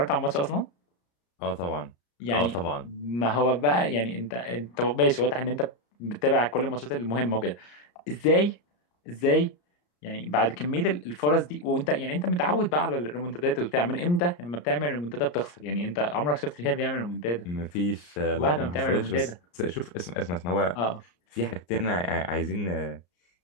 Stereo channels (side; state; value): right; late; 34 ms